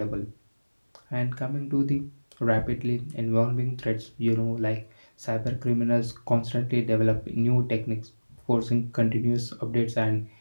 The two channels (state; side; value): inverted; both; correlation -1.00